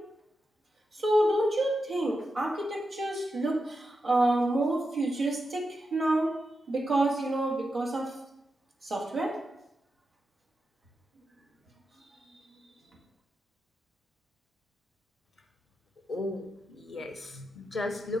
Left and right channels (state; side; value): normal; both; correlation 0.88